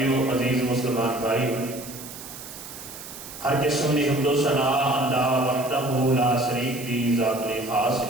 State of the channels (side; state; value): right; noise; hiss, 13 dB below the sound